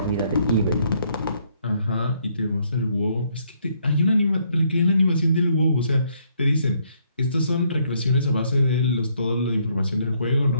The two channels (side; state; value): both; inverted; correlation -0.70